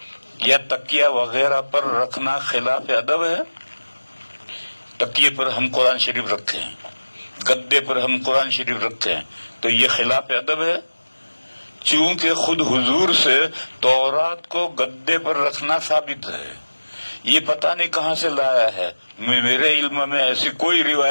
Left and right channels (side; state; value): both; inverted; correlation -1.00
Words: یا تکیہ وغیرہ پر رکھنا خلاف ادب ہے. تکیے پر ہم قرآن شریف رکھے ہیں، گدے پر ہم قرآن شریف رکھتے ہیں، تو یہ خلاف ادب ہے. چونکہ خود حضور سے تورات کو گدے پر رکھنا ثابت ہے. یہ پتہ نہیں کہاں سے لایا ہے، میرے علم میں ایسی کوئی